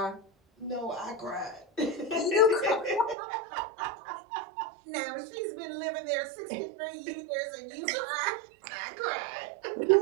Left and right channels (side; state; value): left; drops out; at 3.2 s